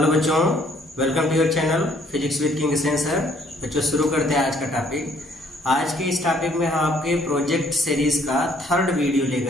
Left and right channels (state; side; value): normal; both; correlation 0.63